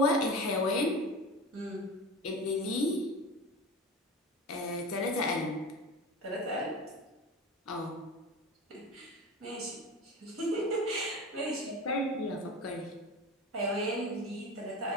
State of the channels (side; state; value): both; normal; correlation 0.30